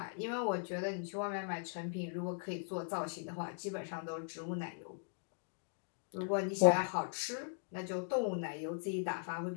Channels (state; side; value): silent; right; digital silence